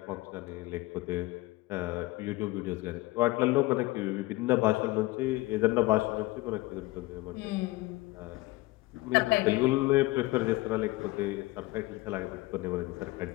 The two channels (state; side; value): quieter; right; 20.6 dB